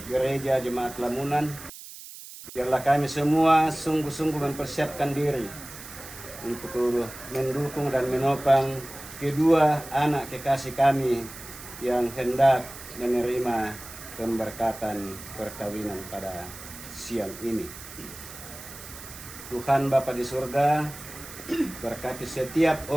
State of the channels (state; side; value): noise; right; hiss, 14 dB below the sound